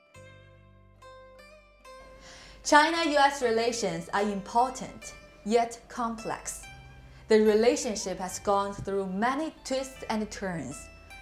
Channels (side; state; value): both; identical; correlation 1.00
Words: China-US relations are important, yet complex. The relationship has gone through many twists and turns,